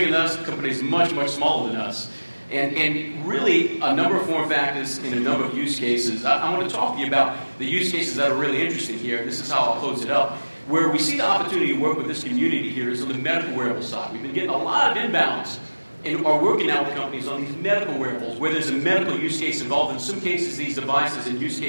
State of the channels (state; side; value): inverted; both; correlation -1.00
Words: than us, companies much, much smaller than us. And really a number of form factors in a number of use cases. I want to talk to you about the use cases that are really interesting here. This is how I'll close it up. Where we see the opportunity to work with this community here is on the medical wearable side. We've been getting a lot of inbounds and are working now with companies on these medical wearables where there's a medical use case involved. In some cases, these devices and use